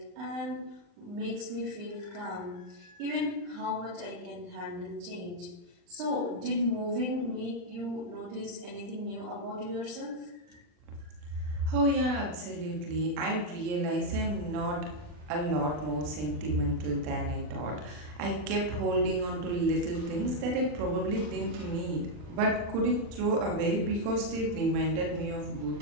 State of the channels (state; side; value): late; left; 40 ms